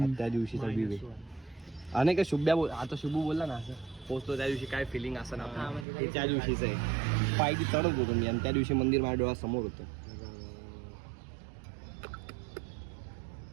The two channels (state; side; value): drops out; left; at 5.9 s